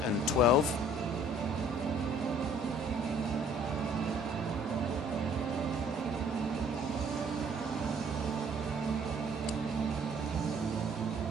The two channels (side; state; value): both; normal; correlation 0.58